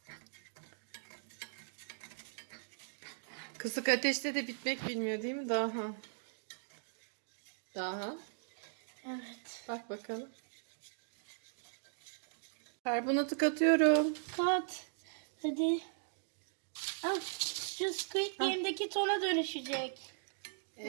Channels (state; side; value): silent; left; digital silence